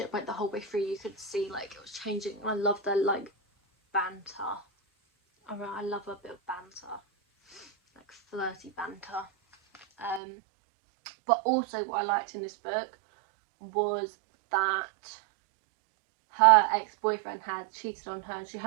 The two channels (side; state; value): left; drops out; at 10.2 s